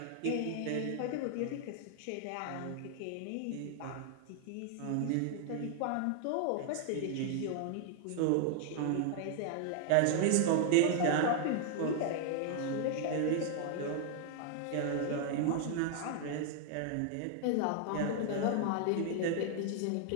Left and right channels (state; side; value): different; both; correlation 0.00